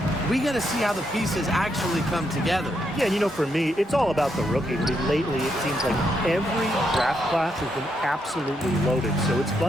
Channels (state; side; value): normal; both; correlation 0.79